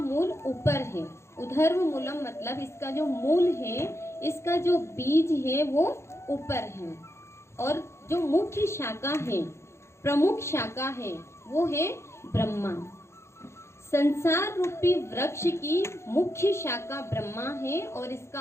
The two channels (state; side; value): late; right; 0.13 ms